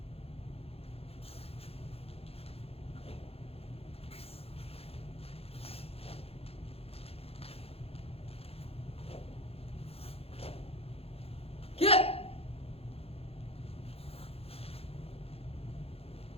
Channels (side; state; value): right; late; 0.29 ms